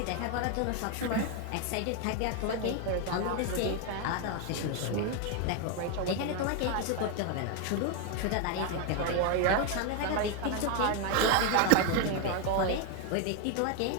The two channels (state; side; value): different; both; correlation 0.01